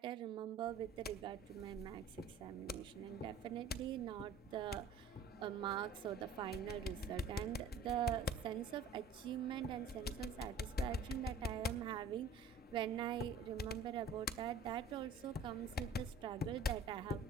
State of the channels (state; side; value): quieter; left; 4.3 dB